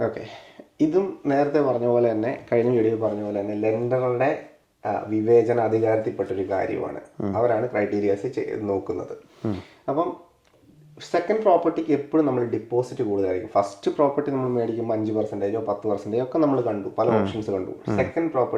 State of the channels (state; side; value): identical; both; correlation 1.00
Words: ഇതും നേരത്തെ പറഞ്ഞ പോലെ തന്നെ, കഴിഞ്ഞ വീഡിയോ പറഞ്ഞ പോലെ തന്നെ ലെൻഡറുടെ വിവേചന അധികാരത്തിൽപ്പെട്ടൊരു കാര്യമാണ്. അവരാണ് ക്രൈറ്റീരിയാസ് നോക്കുന്നത്. അപ്പം സെക്കൻഡ് പ്രോപ്പർട്ടിക്ക് എപ്പോഴും നമ്മൾ ഡിപ്പോസിറ്റ് കൂടുതലായിരിക്കും. ഫസ്റ്റ് പ്രോപ്പർട്ടി നമ്മൾ മേടിക്കുമ്പോൾ 5%, 10% ഒക്കെ നമ്മൾ കണ്ടു, പല ഓപ്ഷൻസ് കണ്ടു. സെക്കൻഡ്